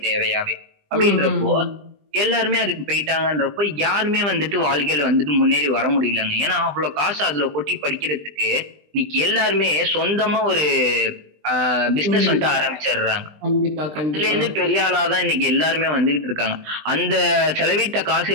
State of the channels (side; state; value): left; late; 20 ms